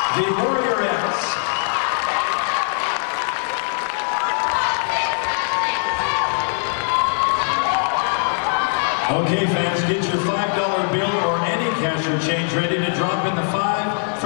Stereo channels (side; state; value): right; silent; 65 dB below the other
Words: The Warriorettes. Okay, fans, get your $5 bill or any cash or change ready to drop in the 5